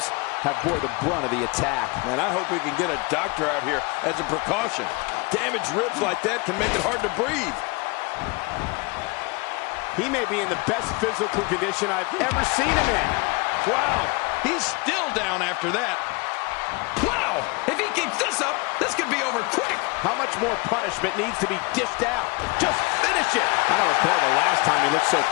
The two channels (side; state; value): right; quieter; 27.6 dB